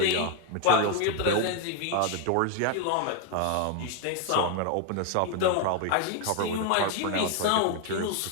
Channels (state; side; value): different; both; correlation 0.01